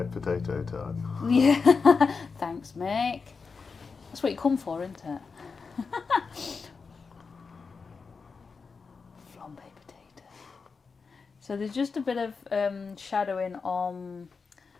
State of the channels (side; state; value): right; quieter; 4.9 dB